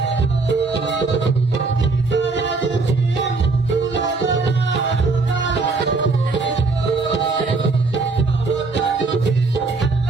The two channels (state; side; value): quieter; left; 3.9 dB